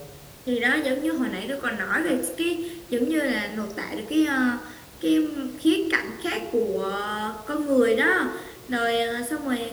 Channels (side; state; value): both; identical; correlation 1.00